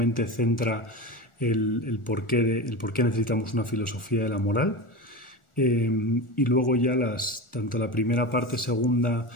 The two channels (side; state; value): right; late; 1.4 ms